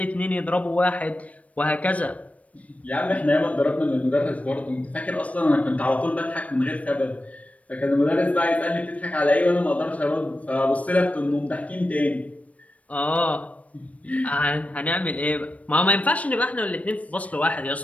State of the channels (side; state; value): right; late; 0.067 ms